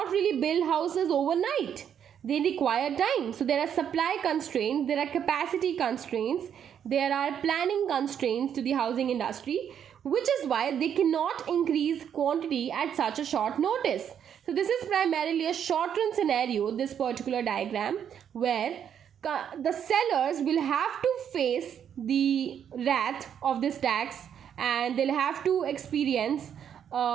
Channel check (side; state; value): left; quieter; 8.7 dB